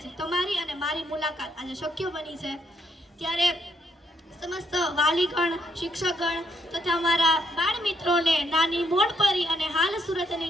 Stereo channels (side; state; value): both; normal; correlation 0.74